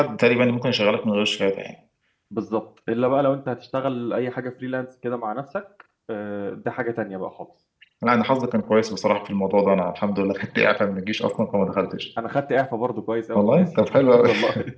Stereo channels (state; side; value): identical; both; correlation 1.00